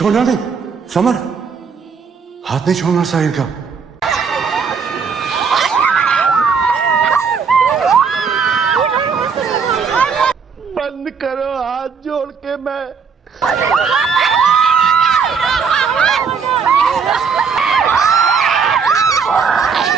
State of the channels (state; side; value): quieter; left; 5.8 dB